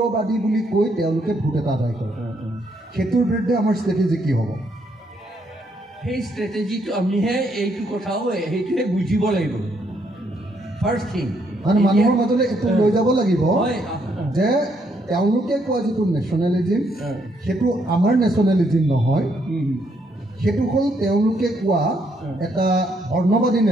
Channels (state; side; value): normal; both; correlation 0.73